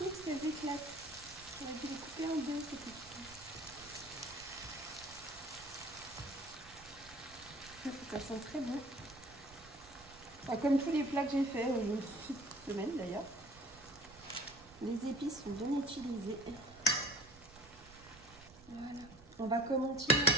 parce qu'elles éclatent. On a dû les couper en deux, ces petites. Ça sent très bon. Enfin, comme tous les plats que j'ai fait cette semaine d'ailleurs. Les épices sont bien utilisées. Voilà. On va continuer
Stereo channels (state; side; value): noise; right; rumble, 22 dB below the sound